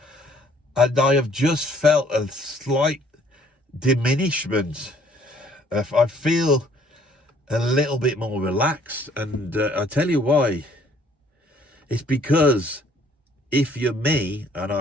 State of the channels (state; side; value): normal; both; correlation 0.61